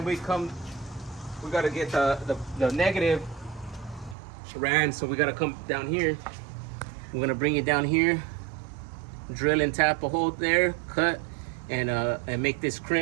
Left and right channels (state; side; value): drops out; left; at 4.2 s